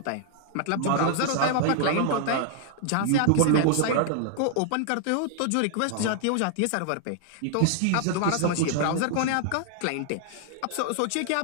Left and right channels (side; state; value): both; different; correlation 0.00